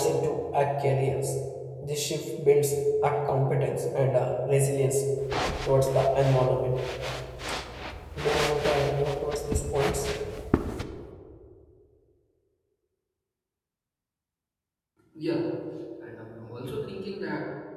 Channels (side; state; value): both; identical; correlation 1.00